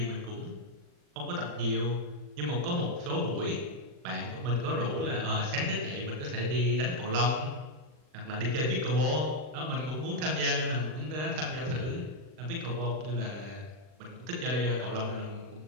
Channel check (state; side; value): late; left; 40 ms